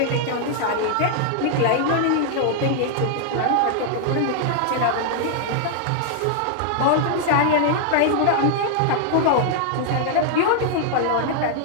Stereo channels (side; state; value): both; different; correlation 0.00